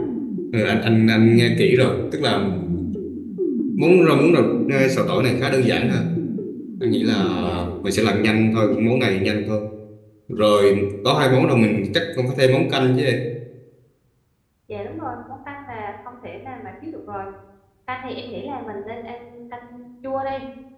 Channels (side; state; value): both; identical; correlation 1.00